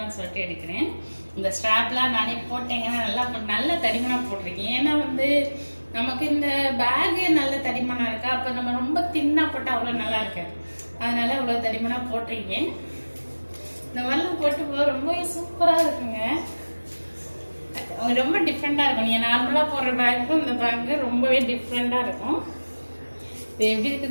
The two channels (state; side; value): inverted; both; correlation -1.00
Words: சொல்லிட்டு எடுக்கிறேன். இந்த ஸ்ட்ராப்லாம் நானே போட்டேங்க. நல்ல தடிமனா போட்டிருக்கேன். ஏன்னா வந்து நமக்கு இந்த பேகு நல்ல தடிமனா இருக்கா, அப்ப நம்ம ரொம்ப தின்னா போட்டா அவ்வளவு நல்லா இருக்காது. அதனால அவ்வளவு தடிமனா போட்டிருக்கேன். இந்த மாதிரிலாம் போட்டு ரொம்ப சூப்பரா இருக்குங்க. ரொம்ப டிஃப்ரெண்டா இருக்கும். நீங்க நார்மலா போடுற பேக்கும் இந்த பேக்கு ரொம்பவே டிஃப்ரெண்டா இருக்கும். இது எப்படி